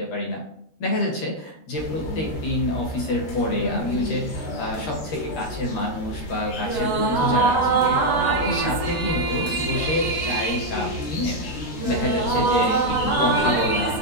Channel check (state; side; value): late; right; 13 ms